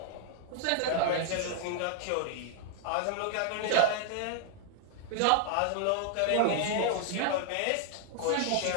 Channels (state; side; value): different; both; correlation 0.00